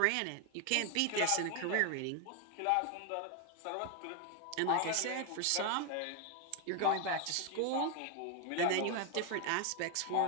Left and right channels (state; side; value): different; both; correlation 0.01